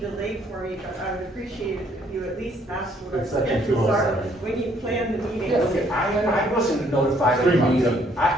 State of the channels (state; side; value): normal; both; correlation 0.66